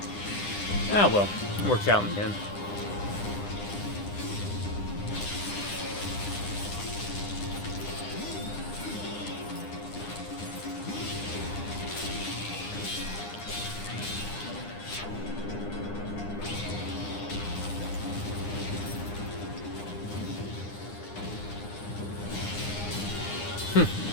Ah, well. It works out in the end.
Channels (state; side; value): late; right; 9.9 ms